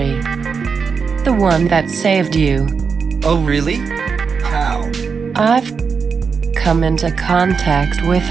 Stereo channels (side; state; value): left; quieter; 5.6 dB